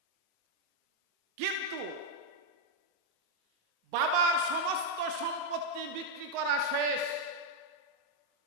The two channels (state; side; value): late; left; 24 ms